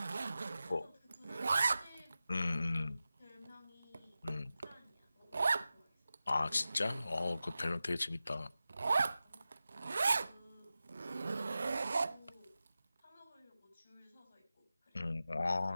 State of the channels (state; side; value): inverted; both; correlation -0.93